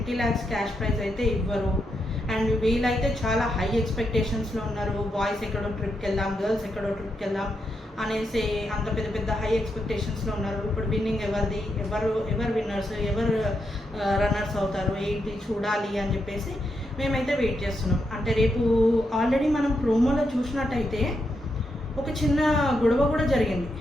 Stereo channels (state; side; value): normal; both; correlation 0.83